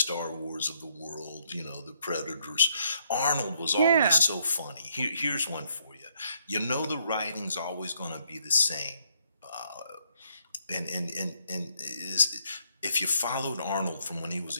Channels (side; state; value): both; inverted; correlation -0.72